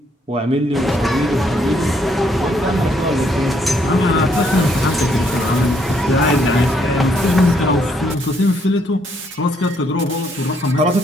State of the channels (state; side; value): normal; both; correlation 0.71